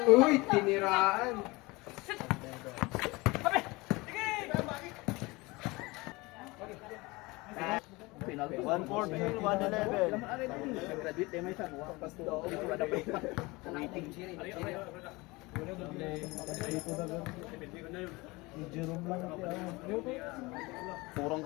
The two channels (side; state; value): right; quieter; 23.4 dB